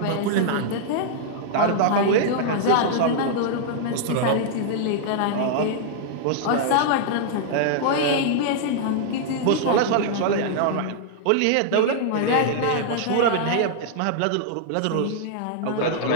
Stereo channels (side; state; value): both; different; correlation -0.01